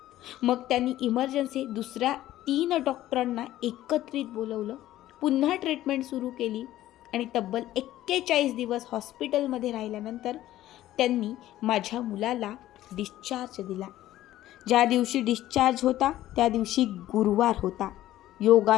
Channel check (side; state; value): right; quieter; 14.2 dB